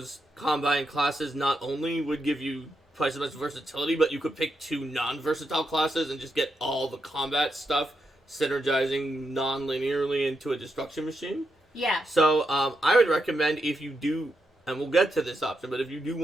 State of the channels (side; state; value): both; normal; correlation 0.83